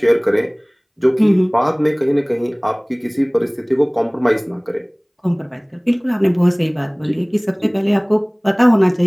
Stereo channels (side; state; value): both; identical; correlation 1.00